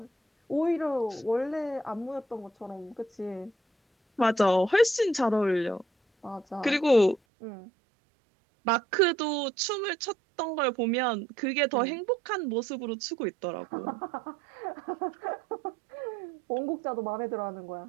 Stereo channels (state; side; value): drops out; left; at 7.2 s